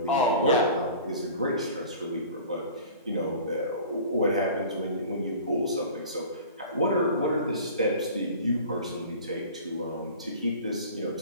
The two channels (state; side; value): inverted; both; correlation -0.41